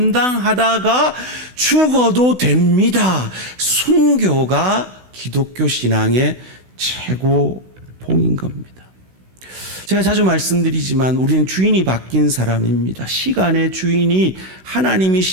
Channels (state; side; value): late; left; 16 ms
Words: 죽어도 됩니다. 순교가 기독교 신앙의 최고봉인 겁니다. 제가 자주 말씀드리지만 우리는 주인이 바뀐 사람입니다. 시간의 주인이